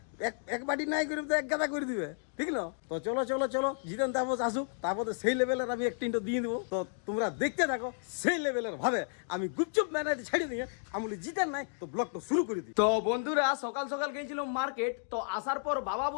এক বাটি নাই করে তো এক গাদা করে দিবে, ঠিক না? তো চলো চলো চলো, জিতেন তাপস আসুক, তারপরে সেই লেভেলের আমি একটা ইন্টো দিয়ে দেবো। তো তোমরা দেখতে থাকো সেই লেভেলের ভাবে আমি গুপচুপ ম্যানাইতে ছেড়ে দিয়ে আমি বলি জিতেন নাই তো ব্লগটা শুরু করে দিই। তো বন্ধুরা, সকাল সকাল গেছিলাম মার্কেট। তো আসার পর বাবা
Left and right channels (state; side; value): silent; right; digital silence